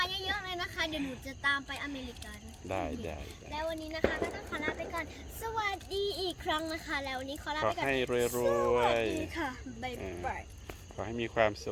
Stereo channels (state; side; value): identical; both; correlation 1.00